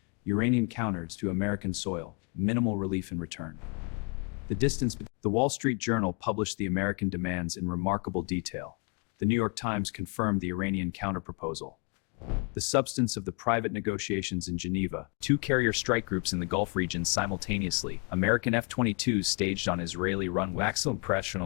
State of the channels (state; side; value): quieter; right; 34.1 dB